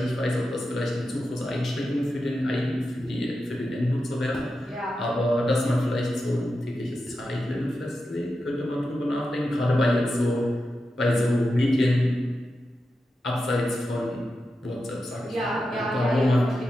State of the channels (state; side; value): normal; both; correlation 0.90